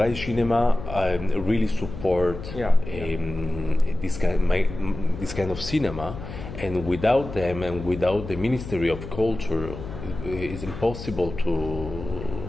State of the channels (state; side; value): noise; left; hum, 10 dB below the sound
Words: Cinema really support this kind of cinema, and without them and without the Ministry of Culture, it's impossible